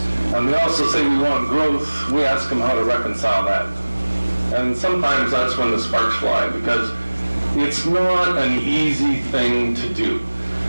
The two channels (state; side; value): inverted; both; correlation -1.00